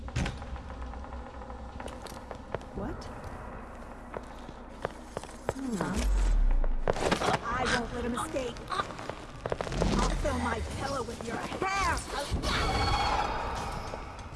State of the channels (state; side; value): identical; both; correlation 1.00